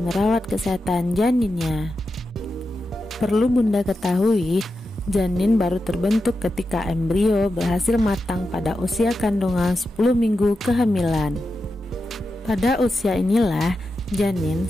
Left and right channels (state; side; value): normal; both; correlation 0.89